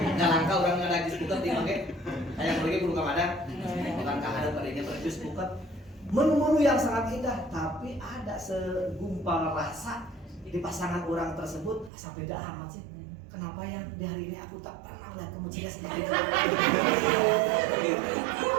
Nggak langka orang ada jus puket di mangke. Aya bagi kudu kamada. Bukan kahadap adanya jus puket. Menu-menu yang sangat indah, tapi ada segumpal rasa di pasangan orang tersebut asa beda amat sih. Kenapa ya di hari ini aku tak pernah lihat kamu ceria seperti itu.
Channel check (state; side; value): drops out; left; at 11.9 s